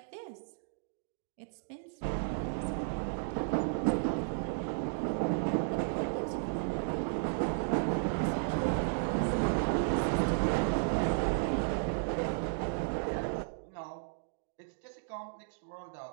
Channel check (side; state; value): left; silent; digital silence